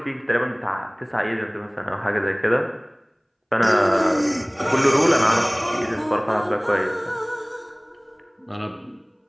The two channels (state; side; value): identical; both; correlation 1.00